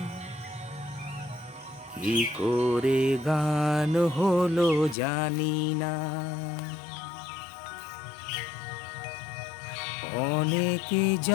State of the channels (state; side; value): drops out; right; at 5.0 s